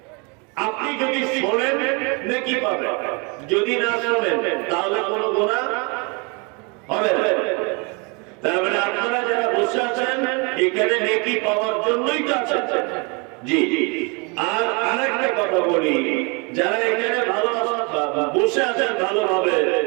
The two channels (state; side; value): quieter; left; 31.4 dB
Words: আপনি যদি শোনেন নেকি পাবেন, যদি না শোনেন তাহলে কোনো গুনাহ হবে না। তার মানে আপনারা যারা বসে আছেন এখানে নেকি পাওয়ার জন্যই তো আছেন। জি। আর আরেকটা কথা বলি, যারা এখানে বসে আছেন ভালোভাবে,